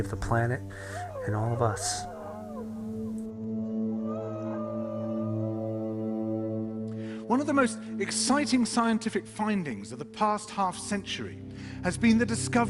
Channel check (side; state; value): both; identical; correlation 1.00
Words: the planet and all of us. One of the most exciting scientific findings of the past half-century has been the